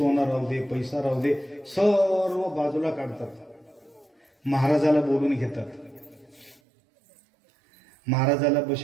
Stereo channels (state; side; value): drops out; left; at 6.6 s